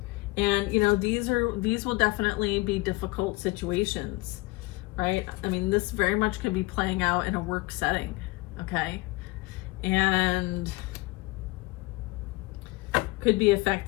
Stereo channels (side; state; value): right; quieter; 22.8 dB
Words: And you know, these will definitely be difficult situations, right? I mean, this very much could be playing out in a work setting, okay? And could be